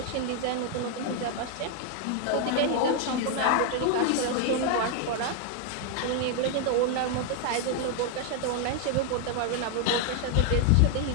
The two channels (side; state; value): both; different; correlation 0.00